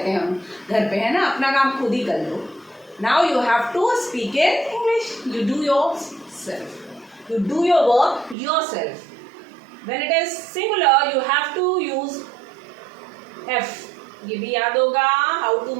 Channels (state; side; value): drops out; left; at 8.3 s